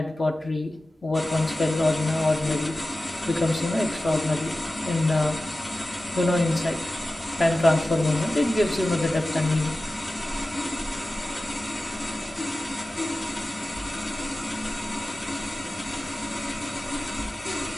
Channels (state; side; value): normal; both; correlation 0.95